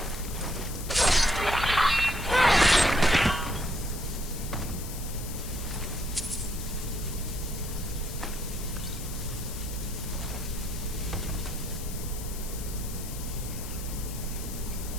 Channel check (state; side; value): noise; left; hiss, 11 dB below the sound